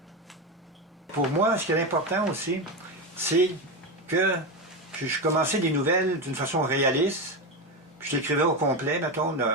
Pour moi, ce qui est important aussi, c'est que je commençais des nouvelles d'une façon réaliste. Puis je l'écrivais au complet, mettons,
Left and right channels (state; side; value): normal; both; correlation 0.15